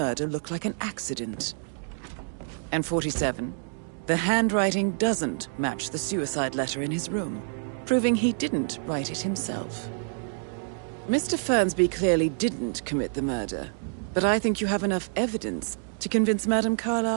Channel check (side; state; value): left; silent; 60 dB below the other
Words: look like an accident. And 47, the handwriting doesn't match the suicide letter in his room, proving he didn't write it himself. Mr. Fernsby clearly didn't commit the murder, but I think you have enough evidence to convince Madame